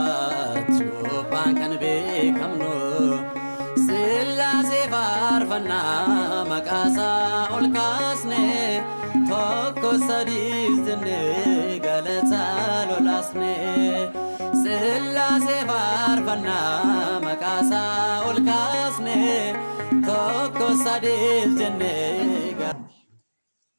ዮባን ከን ቤከምኖ ስላሴ ፋርፈና መቃሳ ኦልካስኔ ቶኮ ሰዲስ ጅኔ ገለታ ሎላስኔ ስላሴ ፋርፈና መቃሳ ኦልካስኔ ቶኮ ሰዲስ ጅኔ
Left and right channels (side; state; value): both; inverted; correlation -1.00